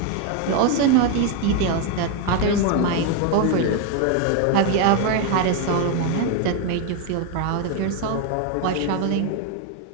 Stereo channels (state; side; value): different; both; correlation 0.01